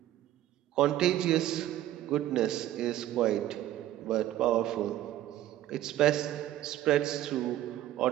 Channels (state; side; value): quieter; left; 13.4 dB